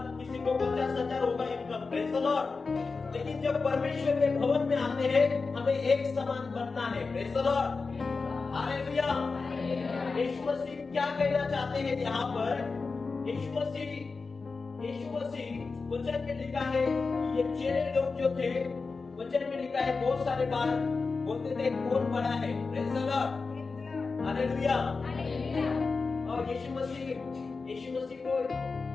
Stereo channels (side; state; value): right; quieter; 4.3 dB